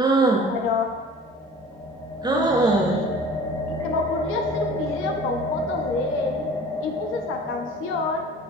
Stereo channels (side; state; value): both; normal; correlation 0.44